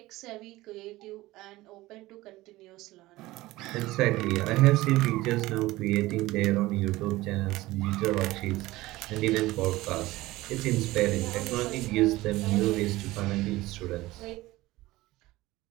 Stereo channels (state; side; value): quieter; left; 18.5 dB